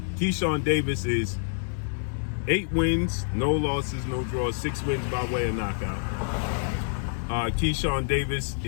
Keyshawn Davis is 8 wins, no losses, no draws, 6 wins by way of knockout. Keyshawn Davis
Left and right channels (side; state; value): right; silent; digital silence